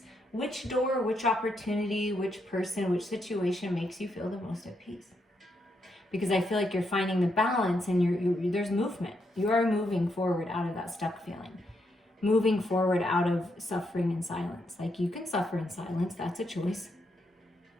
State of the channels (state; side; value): normal; both; correlation 0.79